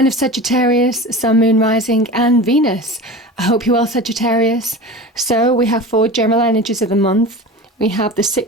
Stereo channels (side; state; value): both; normal; correlation 0.32